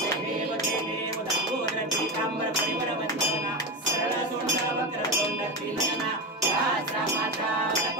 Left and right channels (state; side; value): normal; both; correlation 0.19